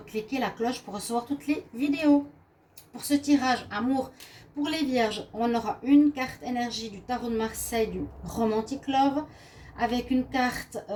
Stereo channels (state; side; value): identical; both; correlation 1.00